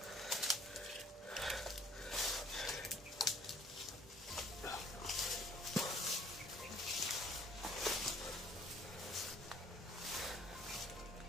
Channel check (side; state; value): both; normal; correlation 0.58